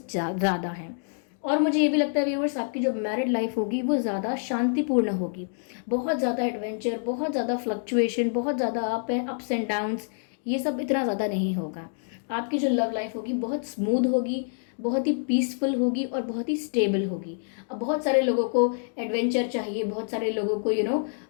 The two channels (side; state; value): right; silent; digital silence